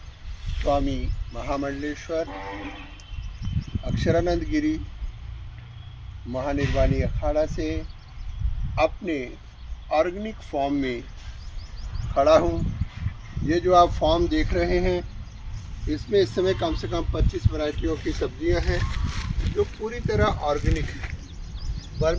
स्वामी महामंडलेश्वर अक्षरानंद गिरी महानिर्वाणी अखाड़ा से अपने ऑर्गेनिक फॉर्म में खड़ा हूँ। ये जो आप फॉर्म देख रहे हैं, इसमें इस समय कम से कम 25 वैरायटियों की सब्जियां हैं जो पूरी तरह ऑर्गेनिक है।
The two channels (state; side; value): identical; both; correlation 1.00